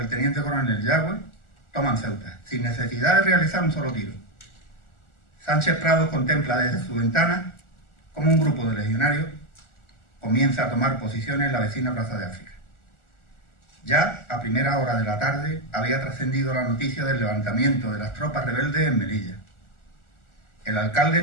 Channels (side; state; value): right; late; 1.4 ms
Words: teniente coronel Yagüe toman Ceuta, sin necesidad de realizar un solo tiro. Sánchez Prado contempla desde su ventana cómo un grupo de legionarios comienza a tomar posiciones en la vecina Plaza de África. Ya a primera hora de la tarde había trascendido la noticia del levantamiento de las tropas rebeldes en Melilla. El alcalde